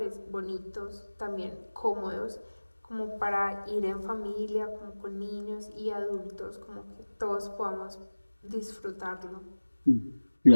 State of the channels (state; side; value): inverted; both; correlation -1.00